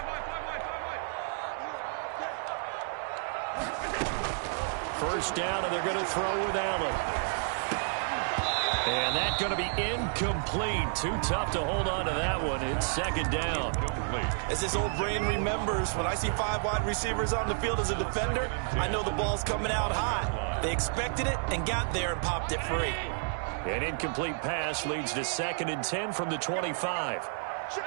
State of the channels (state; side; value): silent; left; 57 dB below the other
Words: First down, and they're going to throw with Allen. And that's going to be incomplete. Too tough to hold on to that one. It's 2nd down. As this old brain remembers, when I see 5 wide receivers on the field as a defender, I know the ball's coming out hot. They expected it and got there and popped it free. An incomplete pass leads to 2nd and 10 from the 25.